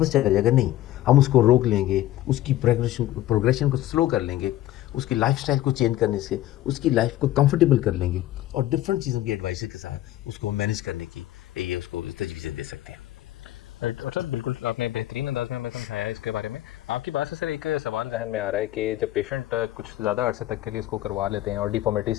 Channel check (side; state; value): right; quieter; 14.4 dB